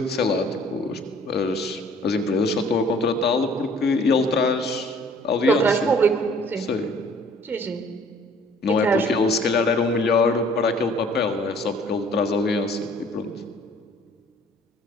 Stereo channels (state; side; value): normal; both; correlation 0.55